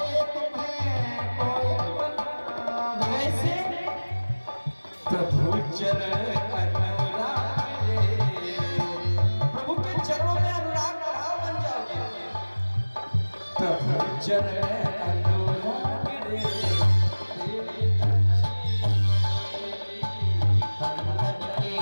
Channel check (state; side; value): inverted; both; correlation -1.00